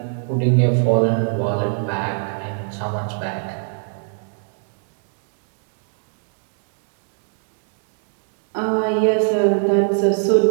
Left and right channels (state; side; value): silent; left; digital silence